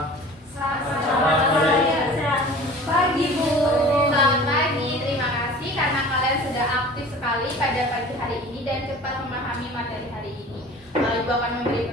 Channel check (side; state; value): both; normal; correlation 0.42